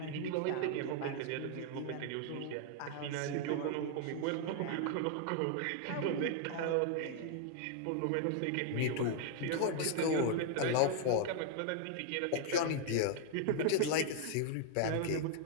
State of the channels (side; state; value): both; different; correlation 0.00